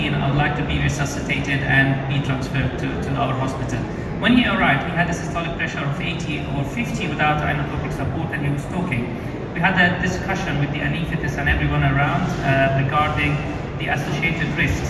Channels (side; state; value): both; identical; correlation 1.00